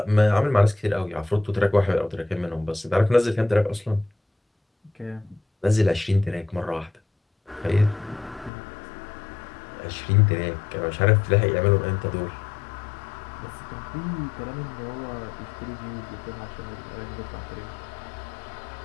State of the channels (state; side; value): drops out; right; at 8.5 s